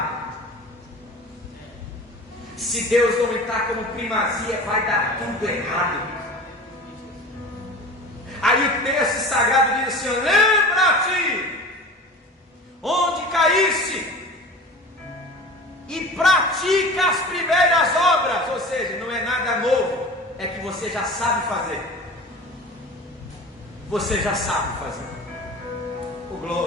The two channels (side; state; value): both; normal; correlation 0.37